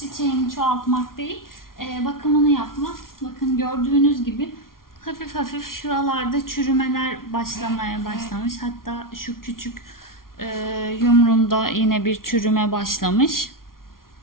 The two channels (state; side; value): late; right; 0.92 ms